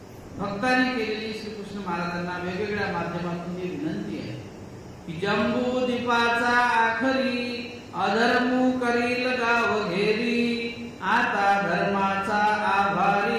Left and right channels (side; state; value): both; identical; correlation 1.00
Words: भक्तांनी केलेली श्रीकृष्ण महाराजांना वेगवेगळ्या माध्यमातून ही विनंती आहे की जंबू दीपाचा आखरी अधर्मू करील गाव घेरी, आता धर्माचा